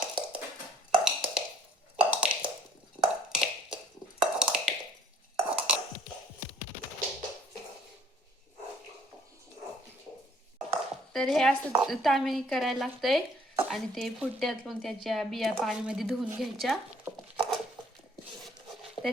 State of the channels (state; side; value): normal; both; correlation 0.60